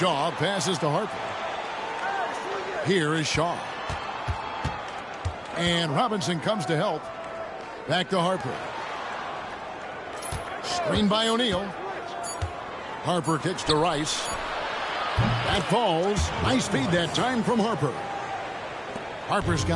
passes to Harper. Here is Shaw. And Robinson comes to help. Back to Harper. Screen by O'Neal. Harper kicks to Rice. That falls. Nice feed that time from Harper. Harper's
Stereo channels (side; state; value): both; identical; correlation 1.00